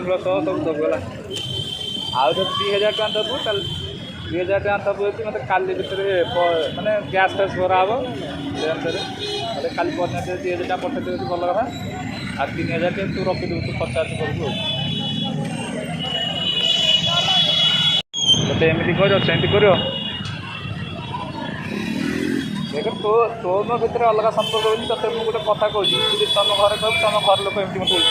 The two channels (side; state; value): both; identical; correlation 1.00